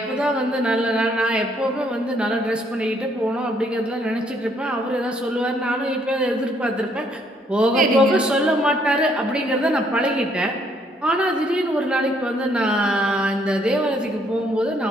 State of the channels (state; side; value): normal; both; correlation 0.68